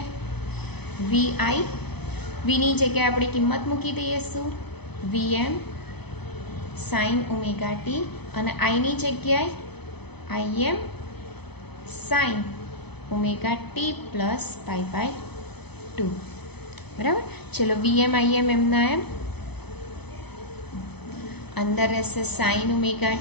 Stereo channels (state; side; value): late; right; 0.98 ms